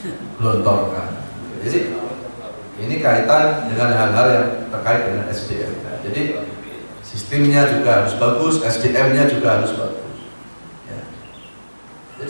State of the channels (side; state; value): both; inverted; correlation -1.00